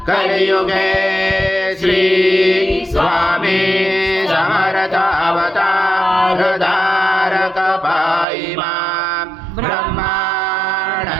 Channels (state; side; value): drops out; left; at 8.2 s